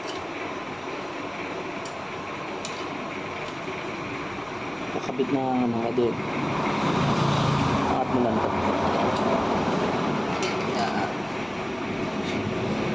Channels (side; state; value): right; noise; rumble, 29 dB below the sound